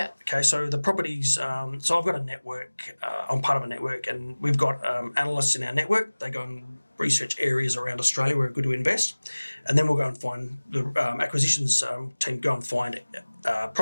Okay, so the properties, so I've got a network, I'm part of a network, and we've got analysts in our network. They go and research areas around Australia where we're good to invest, and then we'll go and find the acquisitions team go and find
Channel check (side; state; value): both; inverted; correlation -1.00